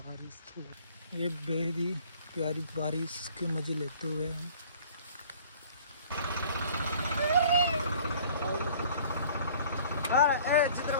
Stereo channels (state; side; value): inverted; both; correlation -0.51